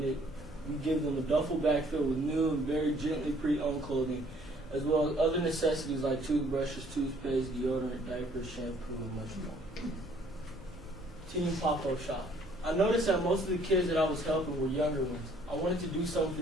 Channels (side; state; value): both; normal; correlation 0.60